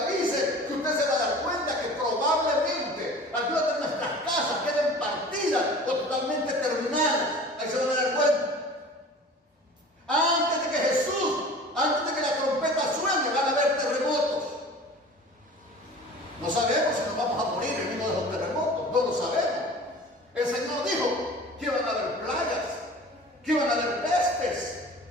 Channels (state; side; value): normal; both; correlation 0.42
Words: que usted se va a dar cuenta que probablemente algunas de nuestras casas queden partidas o totalmente terminadas. Ahí se van a dar cuenta. Antes de que la trompeta suene, van a haber terremotos. No sabemos si nos vamos a morir en uno de los terremotos, no lo sabemos. El Señor dijo que iban a haber plagas, que iban a haber pestes.